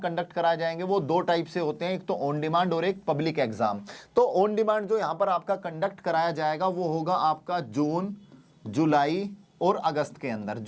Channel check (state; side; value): identical; both; correlation 1.00